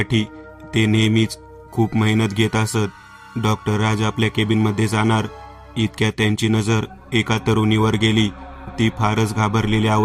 ते नेहमीच खूप मेहनत घेत असत. डॉक्टर राज आपल्या केबिनमध्ये जाणार इतक्यात त्यांची नजर एका तरुणीवर गेली. ती फारच घाबरलेल्या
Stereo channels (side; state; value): both; identical; correlation 1.00